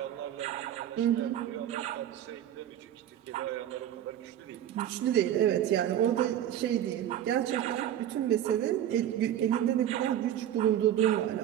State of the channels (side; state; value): left; quieter; 11.1 dB